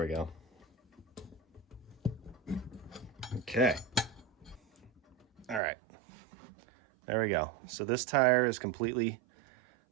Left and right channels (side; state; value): left; drops out; at 5.6 s